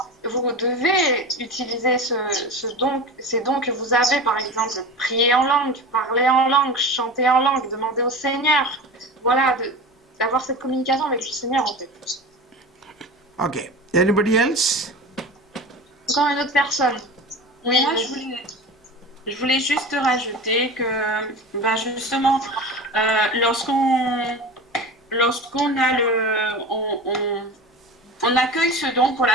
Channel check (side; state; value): both; normal; correlation 0.31